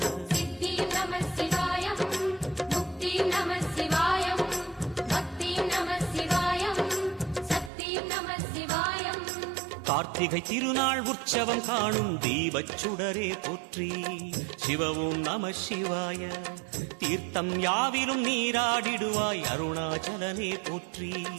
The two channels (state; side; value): drops out; left; at 7.7 s